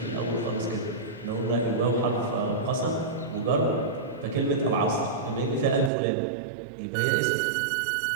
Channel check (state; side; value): drops out; left; at 5.9 s